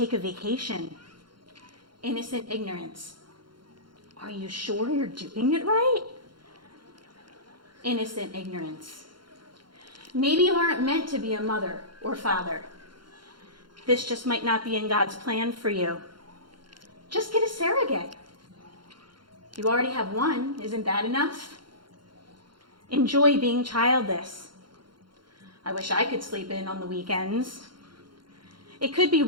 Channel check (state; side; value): late; left; 0.72 ms